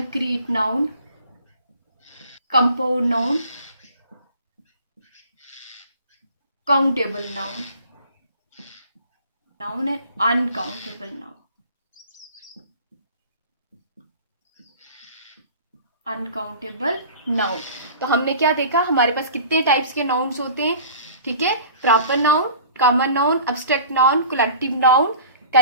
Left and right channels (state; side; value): inverted; both; correlation -0.44